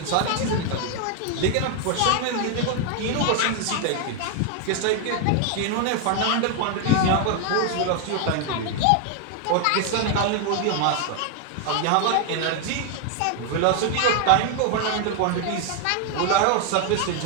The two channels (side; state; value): both; different; correlation 0.00